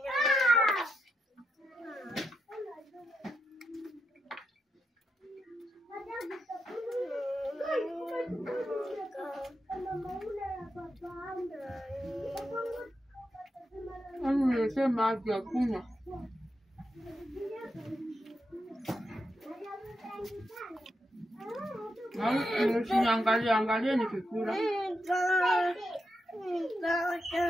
Nilisema maji ya kunywa. Angalia nikikula.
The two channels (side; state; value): both; normal; correlation 0.85